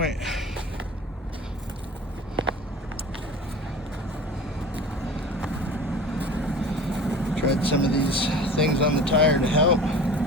Tried some of these things on the tire to help.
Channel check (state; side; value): normal; both; correlation 0.39